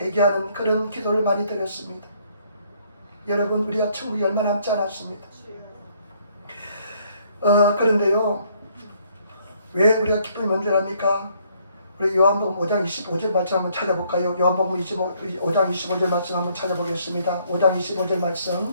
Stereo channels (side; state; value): both; inverted; correlation -0.66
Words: 그런 기도를 많이 드렸습니다. 여러분, 우리가 천국이 얼마 남지 않았습니다. 그런데요, 왜 우리가 기쁨이 먼저랍니까? 우리 요한복음 5장 25절 말씀 한번 찾아볼까요? 요한복음 5장 25절 말씀 한번 찾아보겠습니다. 5장 25절